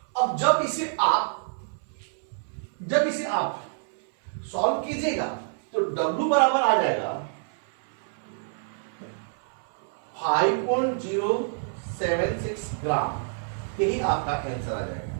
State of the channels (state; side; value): silent; left; 60 dB below the other